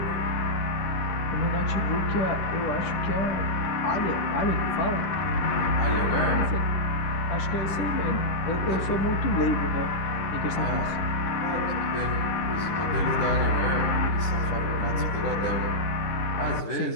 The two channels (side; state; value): right; late; 10 ms